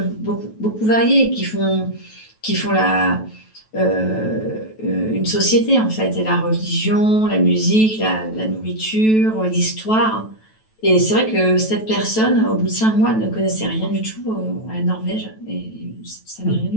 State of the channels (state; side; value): late; right; 9.2 ms